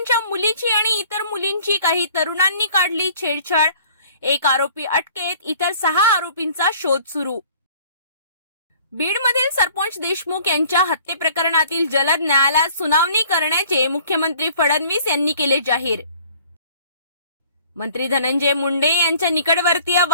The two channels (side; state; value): both; inverted; correlation -0.52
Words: मुलीची आणि इतर मुलींची काही तरुणांनी काढली छेडछाड. एक आरोपी अटकेत, इतर 6 आरोपींचा शोध सुरू. बीडमधील सरपंच देशमुख यांच्या हत्ये प्रकरणातील जलद न्यायालयात सुनावणी करण्याचे मुख्यमंत्री फडणवीस यांनी केले जाहीर. मंत्री धनंजय मुंडे यांच्या निकटवर्तीय